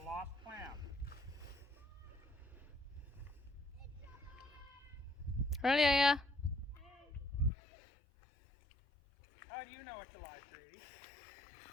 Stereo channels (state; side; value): drops out; right; at 7.5 s